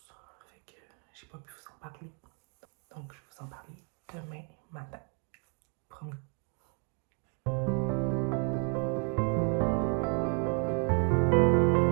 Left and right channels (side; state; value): left; quieter; 36.5 dB